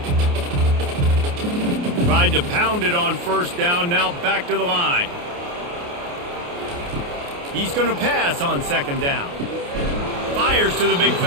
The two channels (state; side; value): late; left; 28 ms